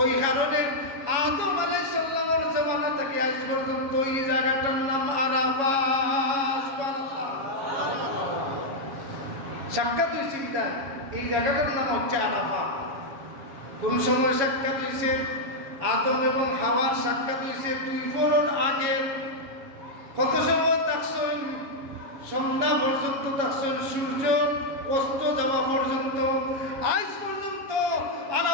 কারণে আদম আলাইহিস সালামের জামানা থেকে আজ পর্যন্ত এই জায়গাটার নাম আরাফা সুবহানাল্লাহ সাক্ষাৎ হইছে বিদায় এই জায়গাটার নাম হচ্ছে আরাফা কোন সময় সাক্ষাৎ হইছে আদম এবং হাওয়ার সাক্ষাৎ হইছে 2 ফোরন আগে কত সময় থাকছেন সন্ধ্যা পর্যন্ত থাকছেন সূর্য অস্ত যাওয়া পর্যন্ত আজ পর্যন্ত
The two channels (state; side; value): late; left; 7.2 ms